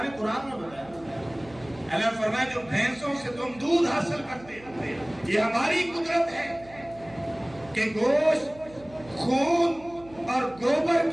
نے قرآن میں بتایا، اللہ فرمایا جو بھینسوں سے تم دودھ حاصل کرتے ہو، یہ ہماری قدرت ہے کہ گوشت، خون اور گوبر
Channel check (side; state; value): right; noise; hum, 22 dB below the sound